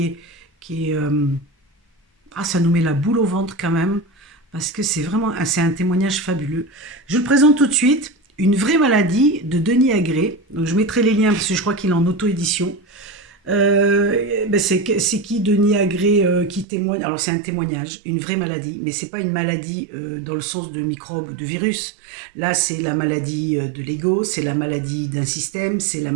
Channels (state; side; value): drops out; left; at 16.7 s